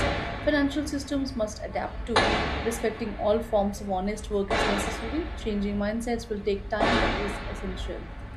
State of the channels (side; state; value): both; identical; correlation 1.00